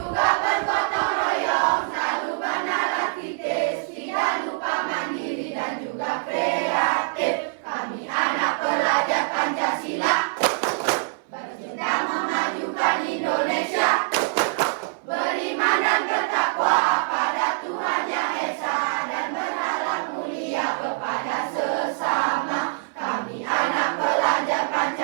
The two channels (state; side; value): silent; left; 62 dB below the other